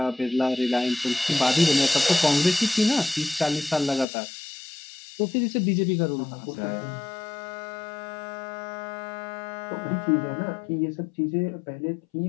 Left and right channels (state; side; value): drops out; right; at 4.0 s